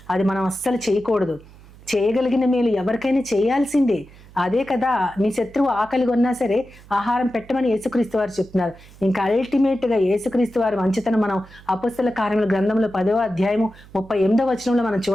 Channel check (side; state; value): right; noise; hum, 22 dB below the sound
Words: అది మనం అస్సలు చేయకూడదు. చేయగలిగిన మేలు ఎవరికైనా చేయాల్సిందే. అదే కదా, నీ శత్రువు ఆకలి కొన్నా సరే ఆహారం పెట్టమని యేసుక్రీస్తు వారు చెప్తున్నారు. ఇంకా అల్టిమేట్ గా యేసుక్రీస్తు వారి మంచితనం మనం అపొస్తలుల కార్యముల గ్రంథంలో 10వ అధ్యాయము 38వ వచనంలో మనం